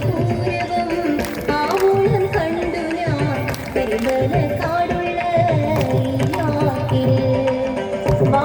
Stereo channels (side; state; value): both; identical; correlation 1.00